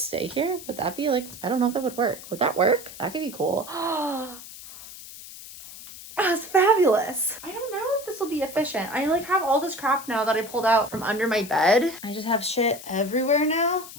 stay here? Would that be like, I don't know if that would work. Would that work? That could be cool. That's fabulous. I don't know if this will be efficient. I like have all this crap now that I pulled out from under my bed. I just have shit everywhere now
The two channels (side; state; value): left; noise; hiss, 15 dB below the sound